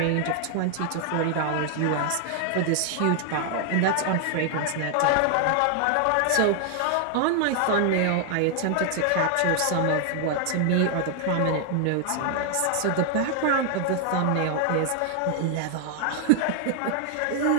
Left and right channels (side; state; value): both; different; correlation 0.00